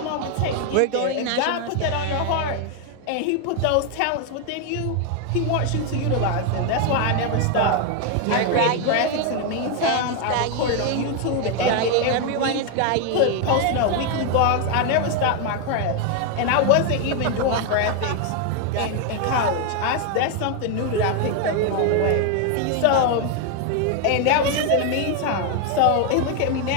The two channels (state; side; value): different; both; correlation 0.01